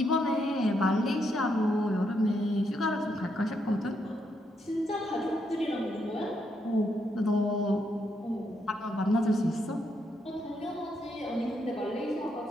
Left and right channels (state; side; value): normal; both; correlation 0.78